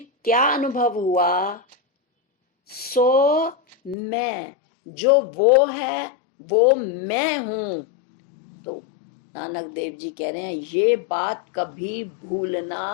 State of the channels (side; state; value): right; drops out; at 4.0 s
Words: क्या अनुभव हुआ? सो मैं, जो वो है वो मैं हूं। तो नानक देव जी कह रहे हैं, ये बात कभी